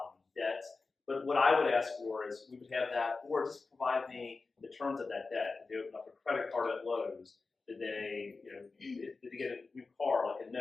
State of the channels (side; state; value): right; quieter; 4.0 dB